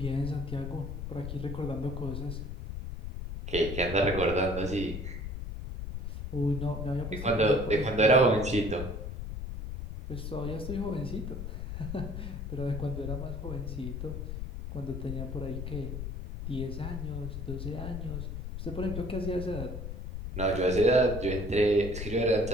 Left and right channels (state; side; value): noise; left; rumble, 6 dB below the sound